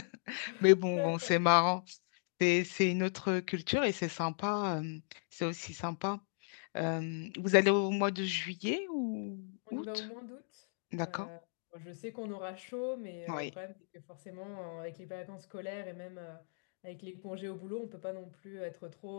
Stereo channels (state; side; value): silent; right; digital silence